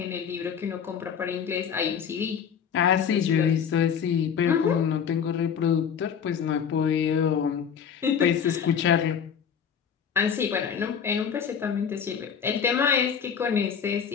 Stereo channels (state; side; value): quieter; right; 7.5 dB